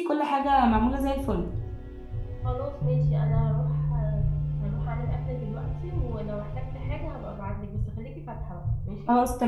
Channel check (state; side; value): identical; both; correlation 1.00